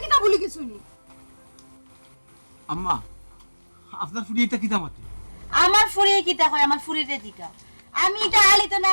কিতা বলি গেছো নি? আম্মা আপনার ফুড়ি এটা কিতা মাতে? আমার ফুরিয়ে কিতা হয়, আমার ফুরিরে দিকা। আমি এটা হালিত না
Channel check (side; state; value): both; inverted; correlation -1.00